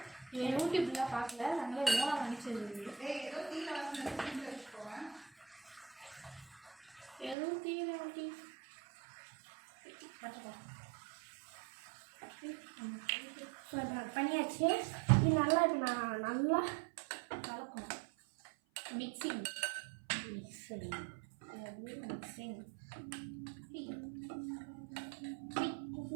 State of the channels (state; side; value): drops out; left; at 7.4 s